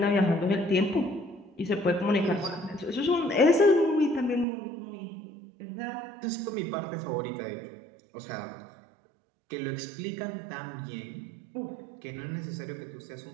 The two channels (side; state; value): left; drops out; at 4.5 s